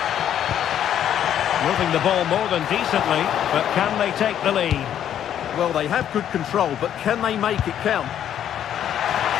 Moving the ball more than decently, but can they take the lead? Well, they have good control, but can they make it count?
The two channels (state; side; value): quieter; right; 10.2 dB